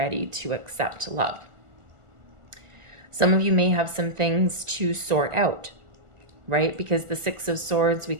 to accept love. Some of you may have some things to sort out, right? Because the Six of Swords, we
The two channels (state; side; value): late; left; 1.4 ms